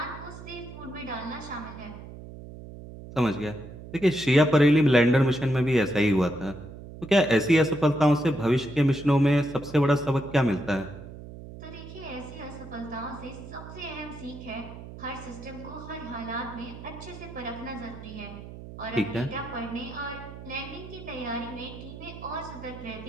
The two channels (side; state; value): right; noise; hum, 14 dB below the sound